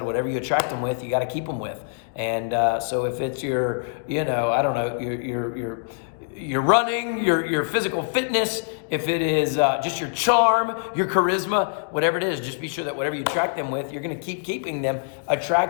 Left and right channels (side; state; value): right; silent; digital silence